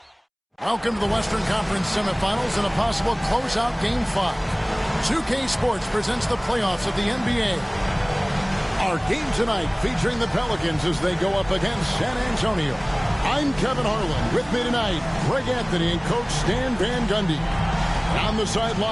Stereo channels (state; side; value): identical; both; correlation 1.00